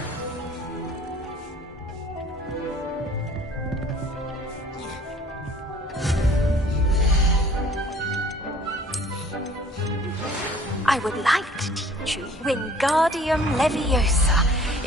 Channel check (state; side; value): normal; both; correlation 0.53